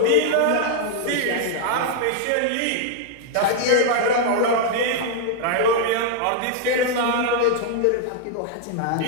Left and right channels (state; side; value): different; both; correlation -0.01